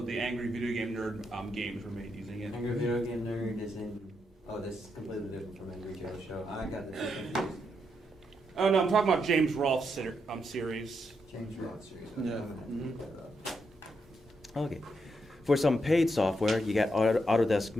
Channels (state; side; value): normal; both; correlation 0.81